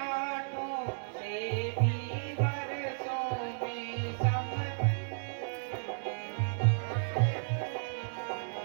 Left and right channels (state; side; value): silent; left; 55 dB below the other